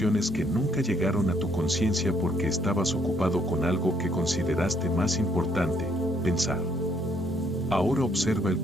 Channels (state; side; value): normal; both; correlation 0.68